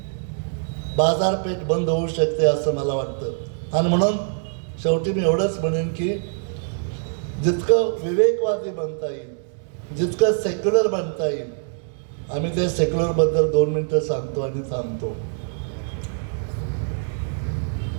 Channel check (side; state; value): left; silent; digital silence